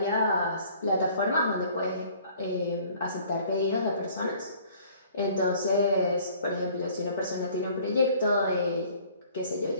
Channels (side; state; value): both; inverted; correlation -0.54